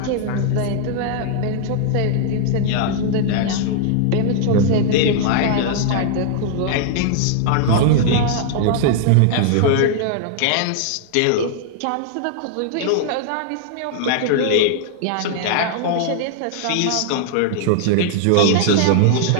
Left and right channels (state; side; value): different; both; correlation -0.01